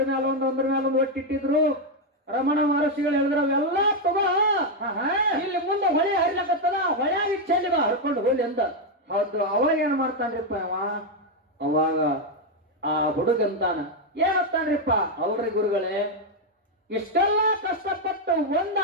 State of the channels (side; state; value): both; normal; correlation 0.03